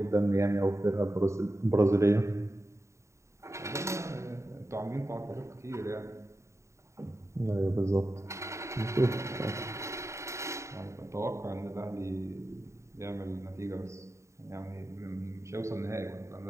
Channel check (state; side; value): late; left; 0.14 ms